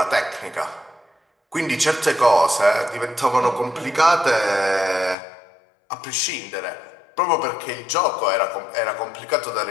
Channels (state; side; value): drops out; right; at 5.2 s